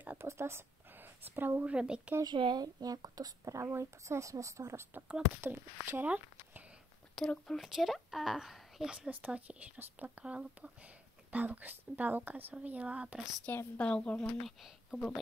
a poslal správu Rebeke, že nejakú tú správu i poslal, som sa z toho rozplakala. Potom včera, útorok bol včera a ja som sa z toho tiež rozplakala, lebo Balúka som videla a proste Balúk bol môj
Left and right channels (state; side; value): normal; both; correlation 0.76